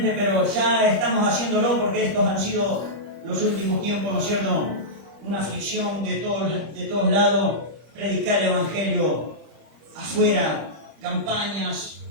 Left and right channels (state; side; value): late; left; 25 ms